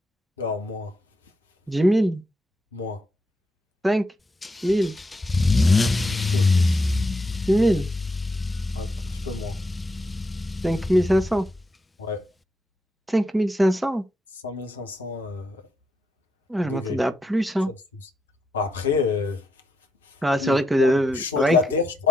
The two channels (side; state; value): both; normal; correlation 0.82